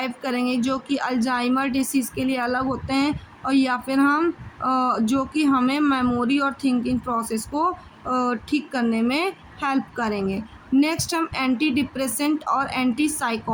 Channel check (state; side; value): identical; both; correlation 1.00